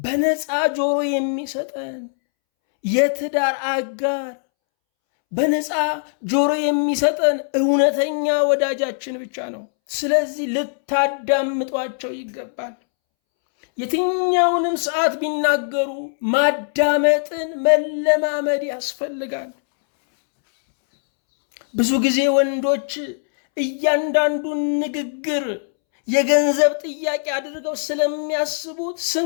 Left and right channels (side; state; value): right; silent; 65 dB below the other